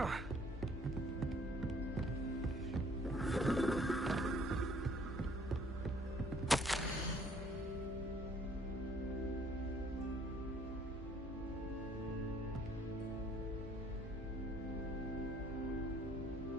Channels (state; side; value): normal; both; correlation 0.60